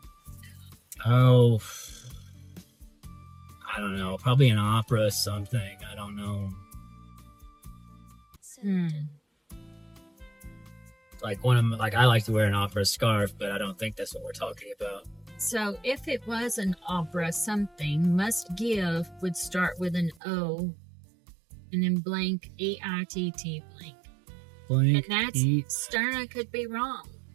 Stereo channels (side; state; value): left; drops out; at 20.2 s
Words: Oh. I don't know. Probably an opera or something. I don't know. Like I like to wear an opera scarf, but I don't think that's what we're talking about. So if it was an opera something, must give would start with an O and then blank E-I-T-T blank. Blank. And that's Sterna could be wrong,